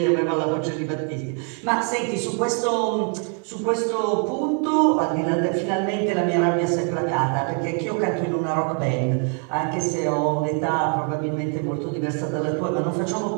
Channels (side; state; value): left; quieter; 39.6 dB